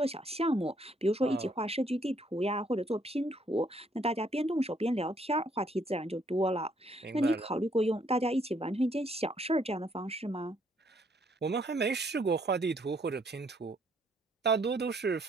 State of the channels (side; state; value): both; normal; correlation 0.68